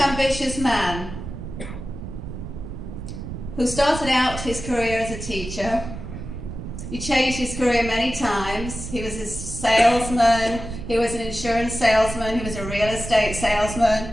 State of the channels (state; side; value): noise; right; rumble, 9 dB below the sound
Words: man who started out his career as a teacher. He changed his career many times. He was a salesman, he was an insurance salesman, he was a real estate salesman.